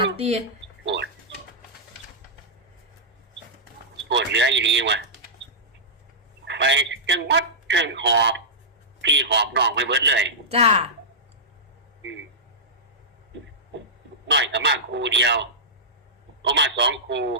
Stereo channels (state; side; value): normal; both; correlation -0.12